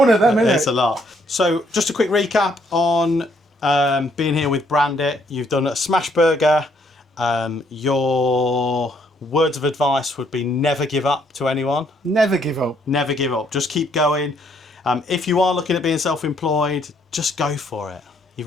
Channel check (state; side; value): normal; both; correlation 0.69